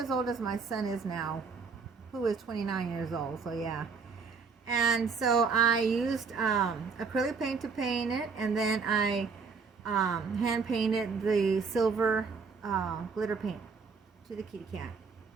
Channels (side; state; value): left; quieter; 5.2 dB